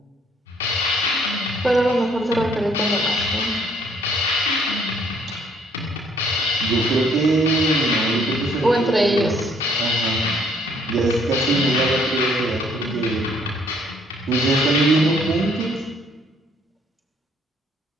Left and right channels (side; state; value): both; normal; correlation 0.64